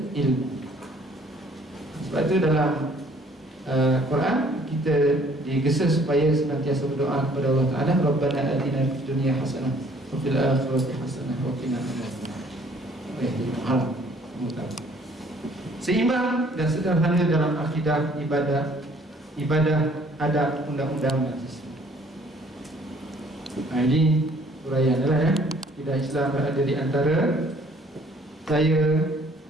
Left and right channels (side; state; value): both; normal; correlation 0.59